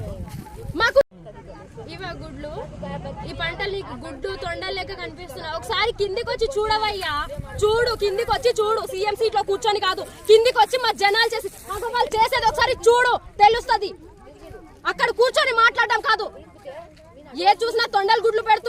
మాకు ఇవా గుడ్లు ఈ పంటలు నీకు గుడ్డు తొండలు లెక్క కనిపిస్తున్నావు. ఒకసారి కిందికి వచ్చి చూడవయ్యా, చూడు కిందికి వచ్చి చూడు. సీఎం సీట్ లో కూర్చొని కాదు, కిందికి వచ్చి మా జనాలు చేసి వాళ్ళు చేసేది ఒకసారి చూడు, తెలుస్తుంది. అక్కడ కూర్చొని మాట్లాడడం కాదు. ఏ చూసినా తొండలు గుడ్లు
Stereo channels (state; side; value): identical; both; correlation 1.00